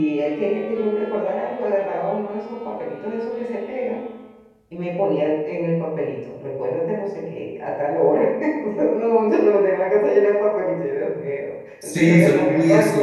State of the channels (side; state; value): both; identical; correlation 1.00